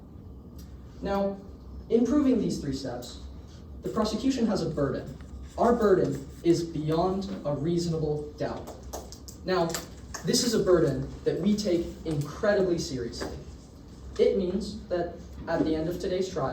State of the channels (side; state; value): both; identical; correlation 1.00